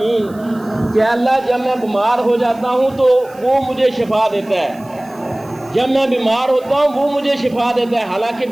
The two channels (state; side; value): noise; right; hiss, 26 dB below the sound